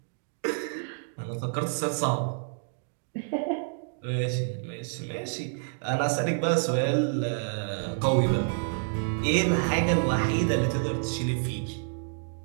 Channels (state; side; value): silent; left; digital silence